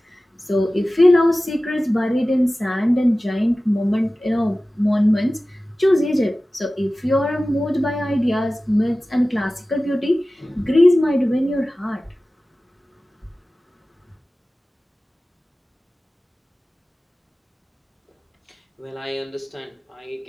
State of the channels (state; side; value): normal; both; correlation 0.96